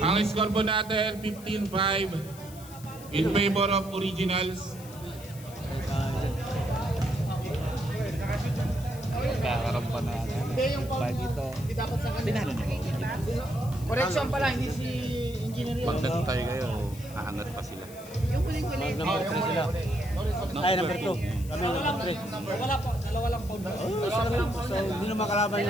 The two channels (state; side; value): noise; left; hiss, 18 dB below the sound